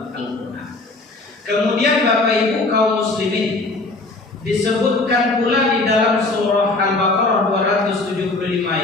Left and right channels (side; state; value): right; quieter; 3.2 dB